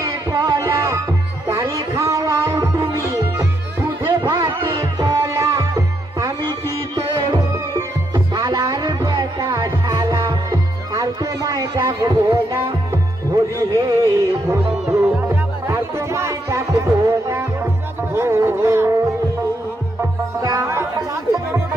কলা তারে খাওয়াও তুমি দুধে ভাতে কলা আমি কি তোর শালার বেটা শালা আর তোমায় ডাকবো না হরি হে বন্ধু আর তোমায় ডাকবো না হরি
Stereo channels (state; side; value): normal; both; correlation 0.78